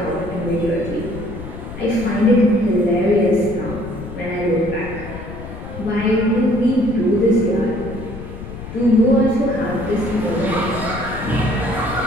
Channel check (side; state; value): left; noise; rumble, 11 dB below the sound